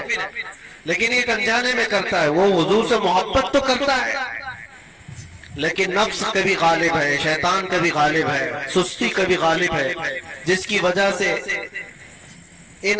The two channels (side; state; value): both; identical; correlation 1.00